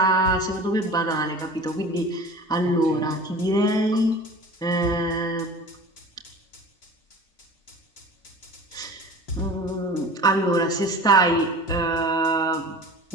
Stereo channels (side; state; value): both; normal; correlation 0.38